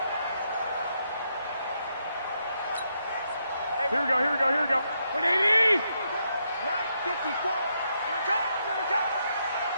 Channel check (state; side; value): inverted; both; correlation -0.79